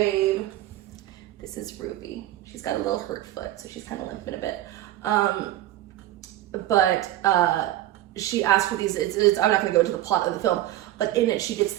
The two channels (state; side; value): quieter; left; 14.4 dB